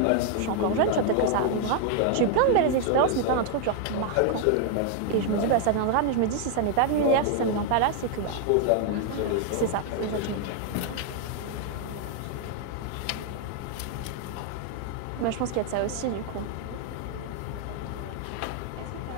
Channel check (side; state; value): both; different; correlation 0.00